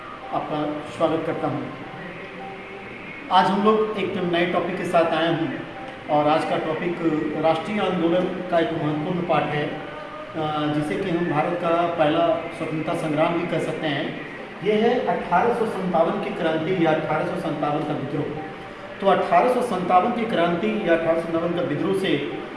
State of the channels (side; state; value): both; identical; correlation 1.00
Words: आपका स्वागत करता हूं। आज हम लोग एक नए टॉपिक के साथ आए हैं और आज का टॉपिक राष्ट्रीय आंदोलन का एक महत्वपूर्ण पार्ट है, जिसे कि हम भारत का पहला स्वतंत्रता संग्राम भी कह सकते हैं। ये है 1857 की क्रांति या 1857 का विद्रोह। तो 1857 की क्रांति या 1857 का विद्रोह से